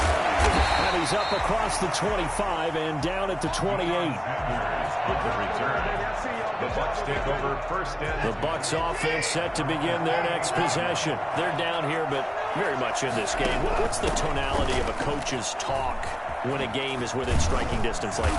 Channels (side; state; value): both; identical; correlation 1.00